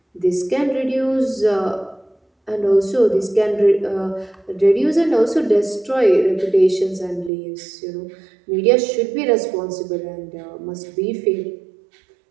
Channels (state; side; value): drops out; left; at 7.3 s